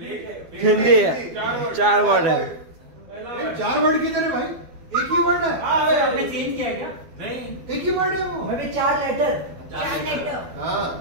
हिंदी है. 4 वर्ड है. 4 वर्ड किधर है भाई. एक ही वर्ड है. आपने चेंज किया है क्या. नहीं एक ही वर्ड है वो. 4 लेटर. हाँ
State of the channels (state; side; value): late; left; 12 ms